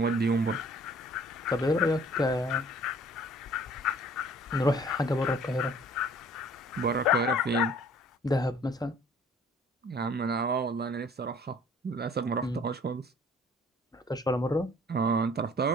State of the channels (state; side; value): normal; both; correlation 0.54